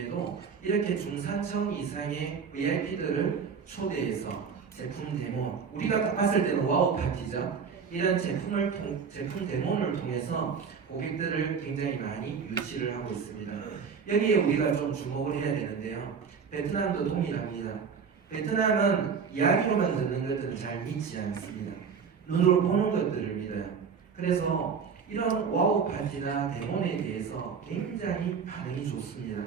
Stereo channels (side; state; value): left; quieter; 6.2 dB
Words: 이렇게 중산층 이상의 VIP들을 초대해서 제품 데모, 우리가 딱 봤을 때는 와우 파티죠. 이런 제품 데모를 통해서 고객들을 굉장히 많이 유치를 하고 있습니다. 여기에 우리가 좀 주목을 해야 되는데요. 베트남도 동일합니다. 베트남은 이야기로만 듣는 것들은 잘 믿지 않습니다. 눈으로 보는 것들을 믿어요. 그래서 이런 와우 파티나 데모에 대해서 굉장히 반응이 좋습니다.